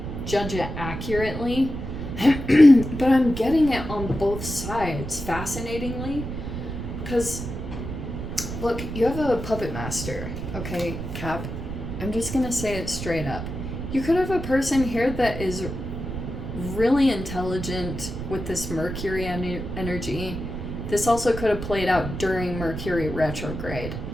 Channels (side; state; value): right; noise; rumble, 6 dB below the sound